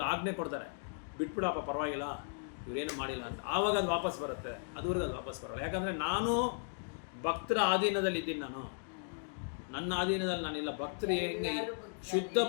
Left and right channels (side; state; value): right; silent; digital silence